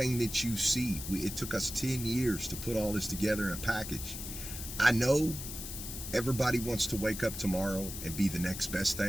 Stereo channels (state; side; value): noise; left; hiss, 8 dB below the sound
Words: that you see, it took us 10 years to put all this together in a package. I know everybody wants to wake up tomorrow and be the next best